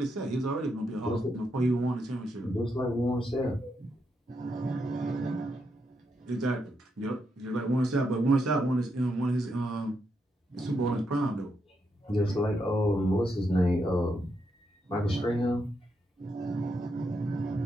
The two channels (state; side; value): normal; both; correlation 0.81